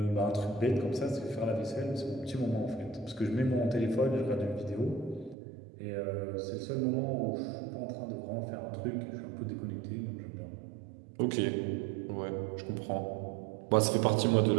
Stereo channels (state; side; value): drops out; left; at 5.4 s